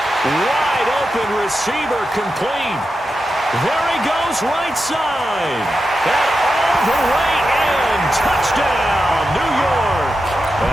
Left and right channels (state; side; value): normal; both; correlation 0.89